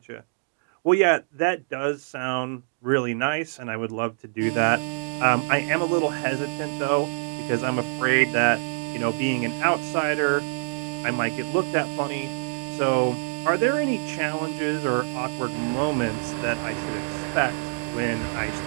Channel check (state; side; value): silent; left; digital silence